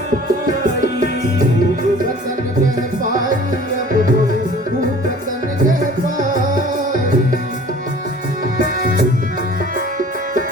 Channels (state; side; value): normal; both; correlation 0.47